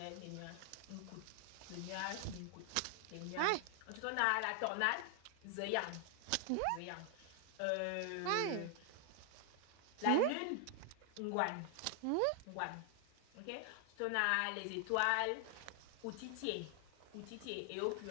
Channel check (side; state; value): both; different; correlation 0.00